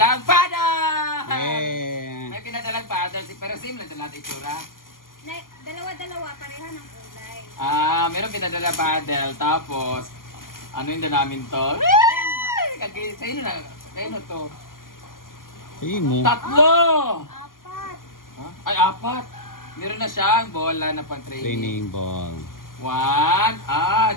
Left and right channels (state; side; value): late; right; 0.91 ms